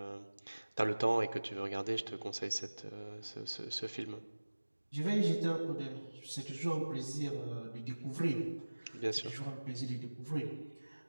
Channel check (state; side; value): inverted; both; correlation -1.00